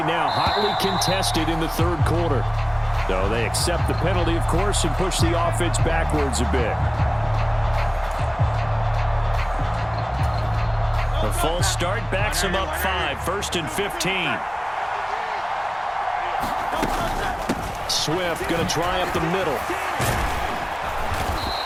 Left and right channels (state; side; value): identical; both; correlation 1.00